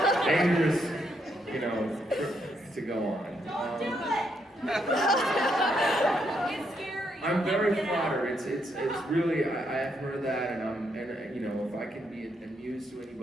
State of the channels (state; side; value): normal; both; correlation 0.76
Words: you know, trip to go on. Don't do it! It's scary. I'm very flattered. It's really, I have heard that, and you know, if I can be amused to